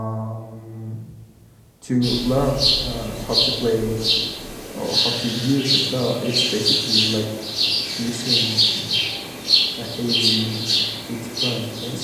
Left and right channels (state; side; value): identical; both; correlation 1.00